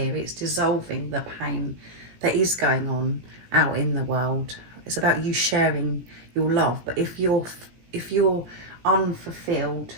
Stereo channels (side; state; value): left; late; 17 ms